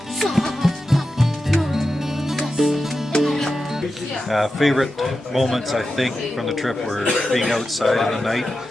Favorite moments, I think, from the trip were being outside in the night,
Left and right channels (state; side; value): normal; both; correlation 0.91